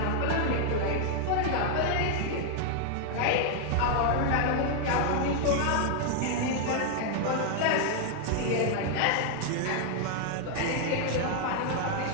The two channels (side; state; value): both; different; correlation 0.00